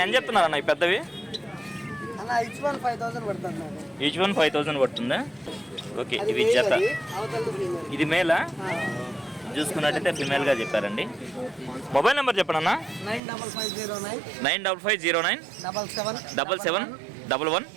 ఏం చెప్తున్నారు అన్న ఈ పెద్దవి? ఈచ్ వన్ 5,000 పడుతుందా? ఓకే. ఇవి జత. ఇది మేలా? చూసుకున్నట్టయితే ఫిమేల్గా చెప్పారండి. మొబైల్ నెంబర్ చెప్పండి అన్న. 9509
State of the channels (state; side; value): drops out; left; at 13.2 s